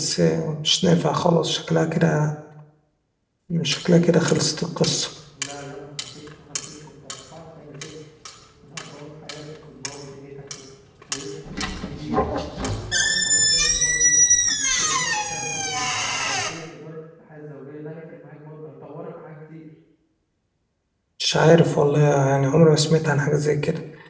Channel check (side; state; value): both; identical; correlation 1.00